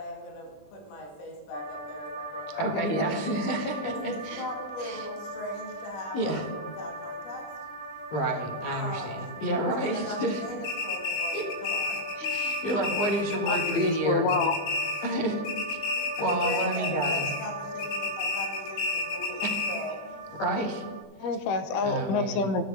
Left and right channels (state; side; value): late; right; 20 ms